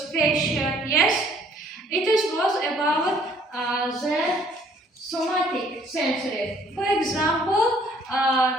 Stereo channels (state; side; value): normal; both; correlation 0.60